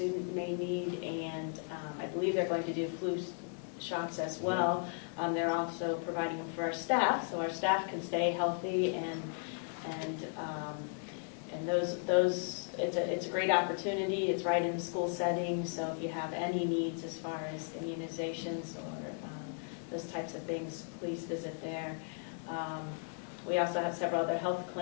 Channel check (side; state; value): right; silent; 54 dB below the other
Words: may need, and I believe they're going to do flu shots as well. They're also providing them for our staff, so our staff can stay healthy, and those it's a great opportunity. It's right in the school setting, so if you have any needs as far as immunizations or those types of things, please visit there. We also have several other health